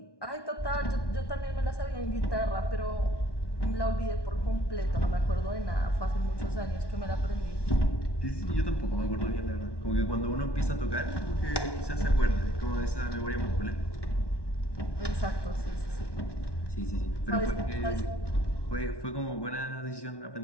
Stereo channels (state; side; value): late; right; 1.1 ms